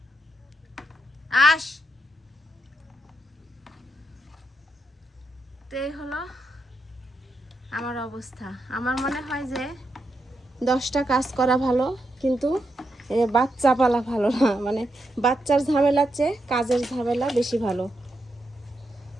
আস। তো এই হলো আমার অবস্থা। আমার মনে হয় যে 10টা কাজ করা ভালো, কিন্তু বাচ্চা পালা ভালো না। মানে বাচ্চার ঝামেলার চেয়ে কাজের ঝামেলা বেশি ভালো।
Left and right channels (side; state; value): both; normal; correlation 0.83